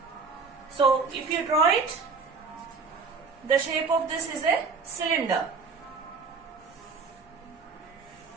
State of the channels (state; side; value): quieter; left; 4.7 dB